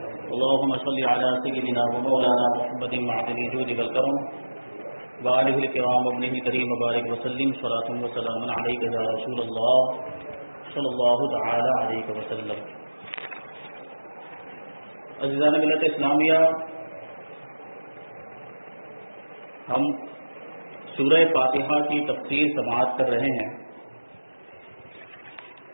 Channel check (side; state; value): both; inverted; correlation -1.00